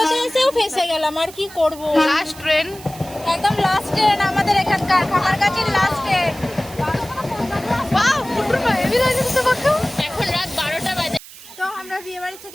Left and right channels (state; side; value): noise; right; hiss, 18 dB below the sound